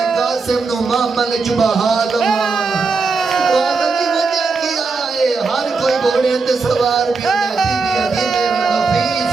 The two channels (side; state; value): left; quieter; 4.4 dB